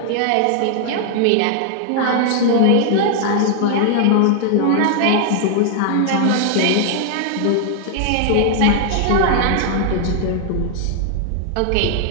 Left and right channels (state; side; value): different; both; correlation 0.00